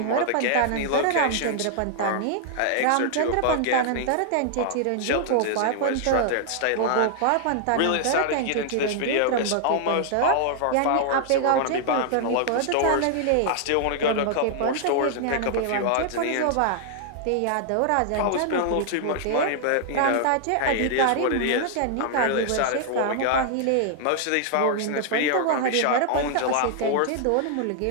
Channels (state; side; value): different; both; correlation 0.00